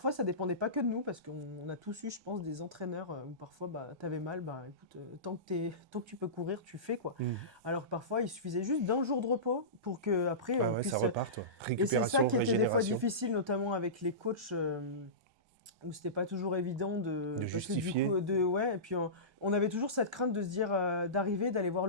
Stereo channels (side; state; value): left; late; 1.2 ms